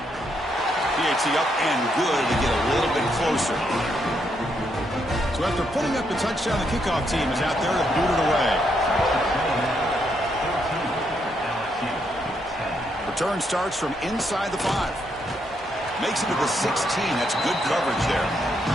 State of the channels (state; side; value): normal; both; correlation 0.77